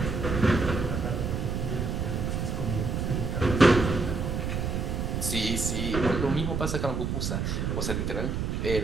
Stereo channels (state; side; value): noise; right; rumble, 1 dB below the sound